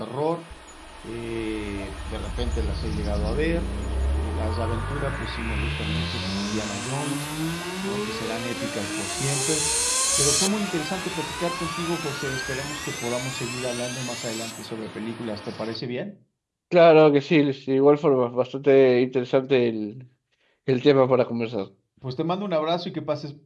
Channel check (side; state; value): both; identical; correlation 1.00